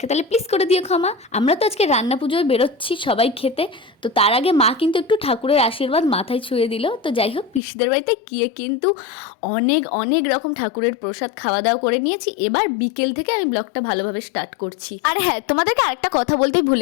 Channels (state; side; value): drops out; right; at 7.6 s